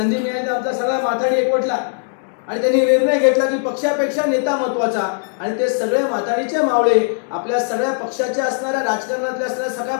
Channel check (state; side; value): silent; right; digital silence